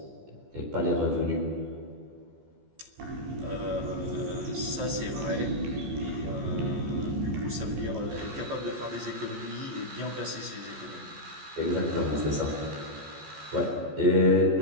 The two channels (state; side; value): late; left; 14 ms